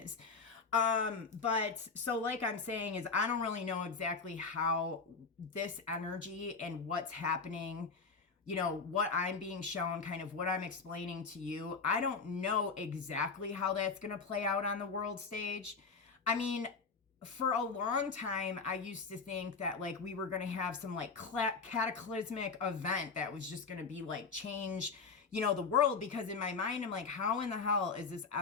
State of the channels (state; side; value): quieter; right; 4.8 dB